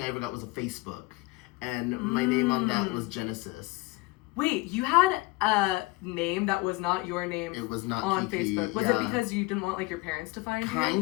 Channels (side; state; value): right; quieter; 22.7 dB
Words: I ever got was a Facebook, and my name on that was Genesis. Wait, you had a name that was not your name. It was not on Kiki, Facebook. Was yeah. it because you didn't want like your parents to find you?